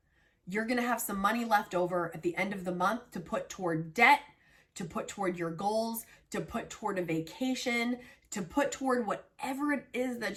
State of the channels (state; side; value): identical; both; correlation 1.00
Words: you're gonna have some money left over at the end of the month to put toward debt, to put toward your goals, to put toward a vacation, to put toward whatever it is